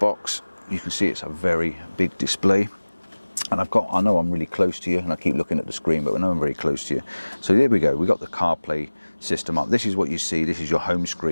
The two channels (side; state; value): both; inverted; correlation -1.00